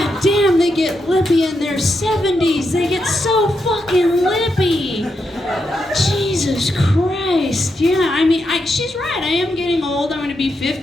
damn, they get lippy in their 70s. They get so fucking lippy. Jesus Christ. Yeah, I mean, she's right. I am getting old. I'm going to be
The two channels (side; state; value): both; normal; correlation 0.83